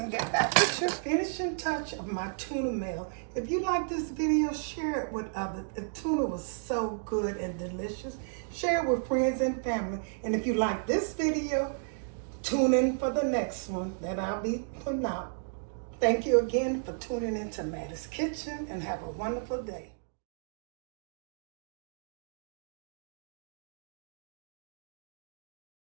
get back with your finishing touch of my tuna melt. If you like this video, share it with others. The tuna was so good and delicious. Share it with friends and family. And if you like this video, tune in for the next one that I'll be putting out. Thank you again for tuning into Mattie's Kitchen, and have a wonderful day.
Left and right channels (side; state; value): left; silent; digital silence